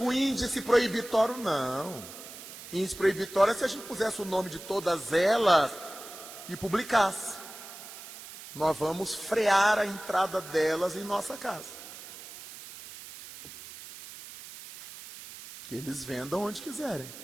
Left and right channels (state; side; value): noise; right; hiss, 14 dB below the sound